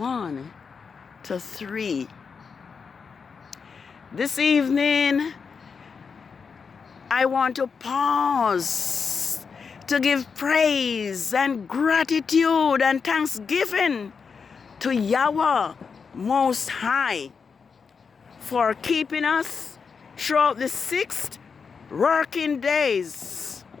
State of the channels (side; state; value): right; quieter; 5.7 dB